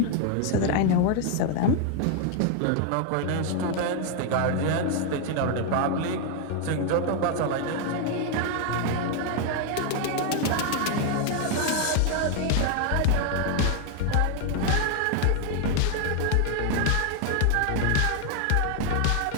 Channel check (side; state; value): both; different; correlation 0.00